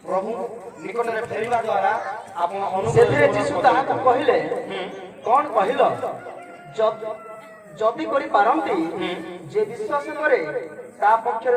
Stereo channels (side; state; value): both; identical; correlation 1.00